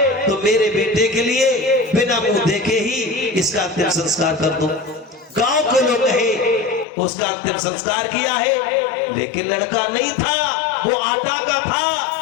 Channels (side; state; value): right; drops out; at 6.9 s